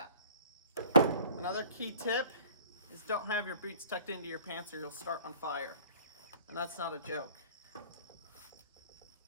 Another key tip is don't have your boots tucked into your pants or you'll start on fire. And that's not a joke.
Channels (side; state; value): both; inverted; correlation -0.49